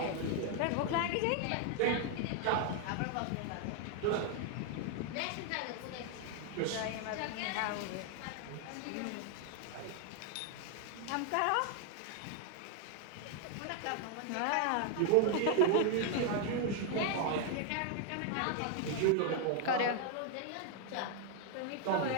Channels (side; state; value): both; different; correlation 0.00